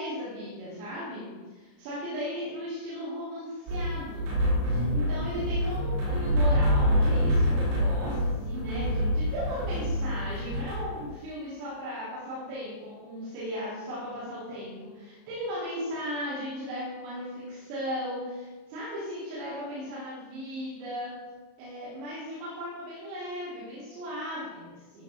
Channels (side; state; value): left; late; 34 ms